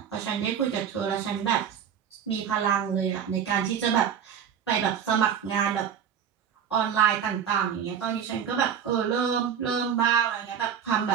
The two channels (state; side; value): quieter; left; 8.2 dB